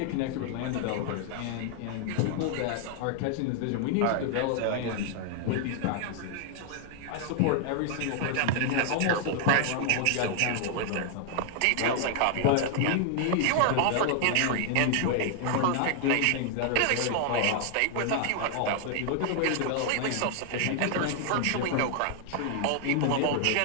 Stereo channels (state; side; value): different; both; correlation 0.00